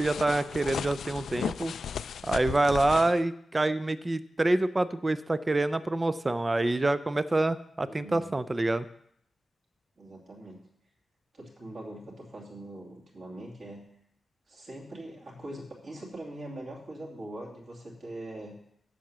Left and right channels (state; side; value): normal; both; correlation 0.96